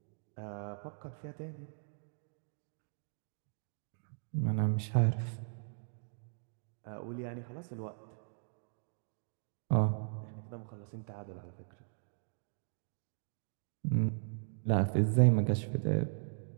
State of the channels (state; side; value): silent; left; digital silence